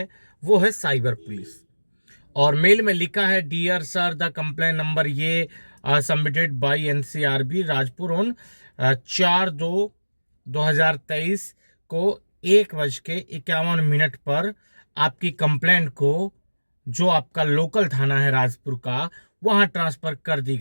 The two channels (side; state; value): both; inverted; correlation -1.00